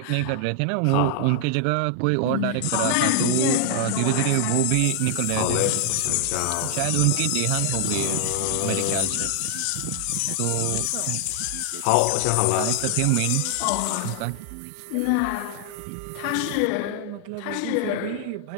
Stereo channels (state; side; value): different; both; correlation 0.00